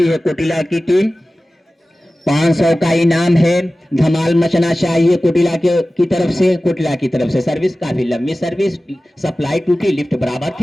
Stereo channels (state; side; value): normal; both; correlation 0.96